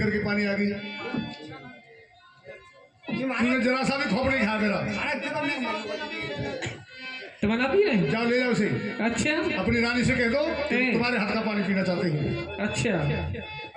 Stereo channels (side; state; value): both; identical; correlation 1.00